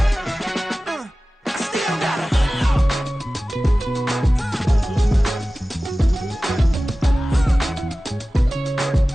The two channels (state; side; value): normal; both; correlation 0.96